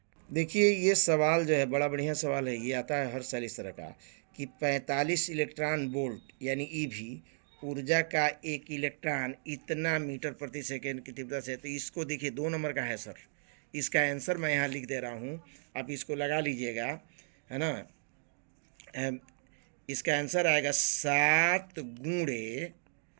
देखिए ये सवाल जो है बड़ा बढ़िया सवाल है। ये आता है हर साल इस तरह का कि 45 इलेक्ट्रॉन वोल्ट यानी ईवी ऊर्जा का 1 इलेक्ट्रॉन इतना मीटर प्रति सेकेंड की तीव्रता से। तो इसको देखिए 2 नंबर का है सर। इसका आंसर मैं यहाँ लिख दे रहा हूँ, आप इसको लगा लीजिएगा, है ना। इसका आंसर आएगा 7 ×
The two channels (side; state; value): left; silent; digital silence